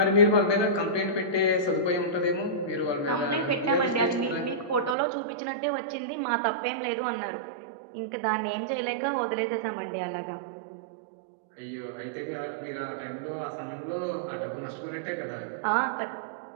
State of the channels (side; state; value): left; drops out; at 5.0 s